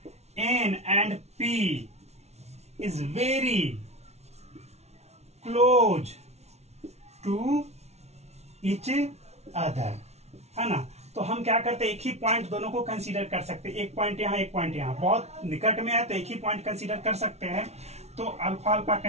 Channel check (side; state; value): left; late; 0.31 ms